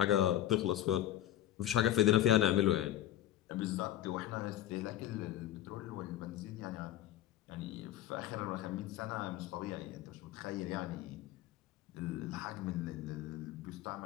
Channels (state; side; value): quieter; right; 12.8 dB